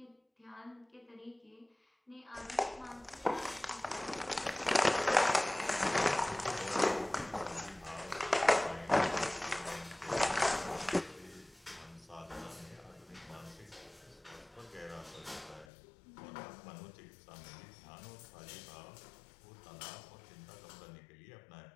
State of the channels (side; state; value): right; drops out; at 15.7 s